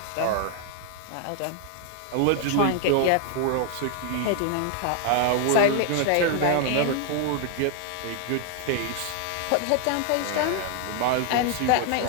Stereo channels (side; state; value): both; different; correlation 0.00